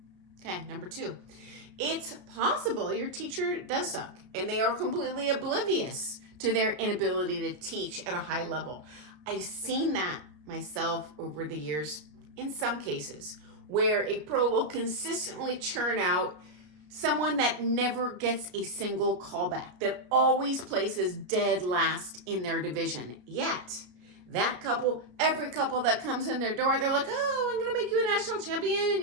Okay, number 2. It's possible your teacher does suck, and they are completely oblivious to their inability to teach at a high level. I've seen that myself over the years in some cases, where a pro will consistently churn out someone that never gets a single callback, that always places dead last in their division. Yet, that couple, every couple that comes in their door, they're like, oh, I'm gonna make you a national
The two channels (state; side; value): late; left; 33 ms